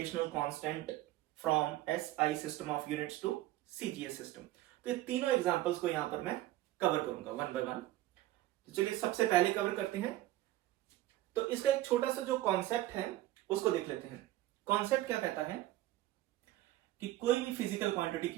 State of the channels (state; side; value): quieter; left; 15.6 dB